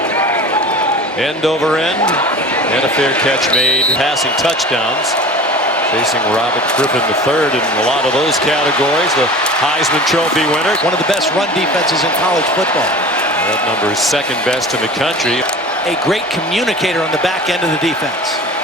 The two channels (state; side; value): normal; both; correlation 0.39